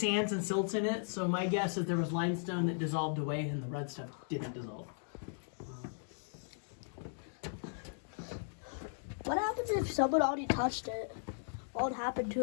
and silts in it, so my guess is there was limestone that dissolved away and the red stuff didn't dissolve. What happens if someone already touched it? What would happen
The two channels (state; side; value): silent; right; digital silence